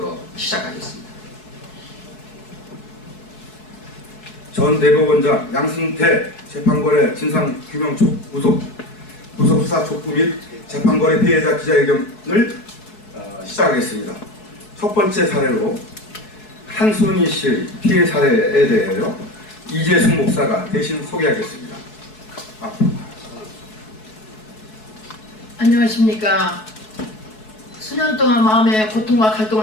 시작하겠습니다. 전 대법원장 양승태 재판거래 진상규명 구속수사 촉구 및 재판거래 피해자 기자회견을 시작하겠습니다. 첫 번째 사례로 한순희 씨 피해 사례에 대하여 이재숙 목사가 대신 소개하겠습니다. 안녕하십니까. 수년 동안 마음의 고통과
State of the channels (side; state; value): right; late; 4.7 ms